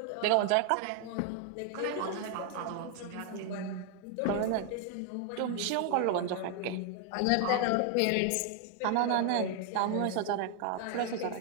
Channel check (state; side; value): different; both; correlation 0.00